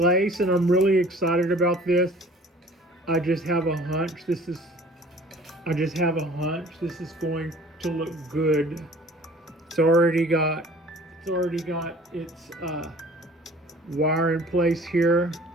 and I'm really excited about this. I just have a hunch. I just have a hunch this is going to look good. It's already got its wire in place here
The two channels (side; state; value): both; normal; correlation 0.49